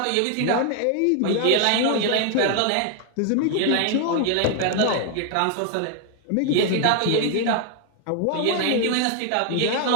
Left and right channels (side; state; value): both; different; correlation 0.00